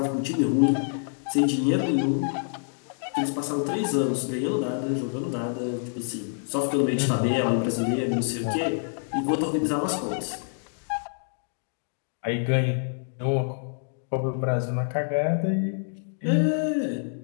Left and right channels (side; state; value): right; silent; digital silence